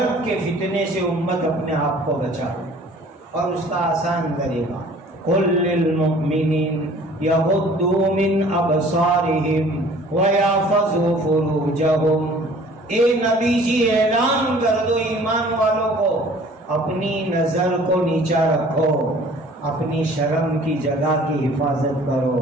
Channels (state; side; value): normal; both; correlation 0.51